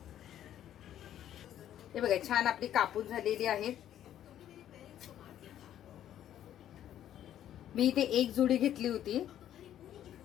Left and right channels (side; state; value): right; quieter; 11.2 dB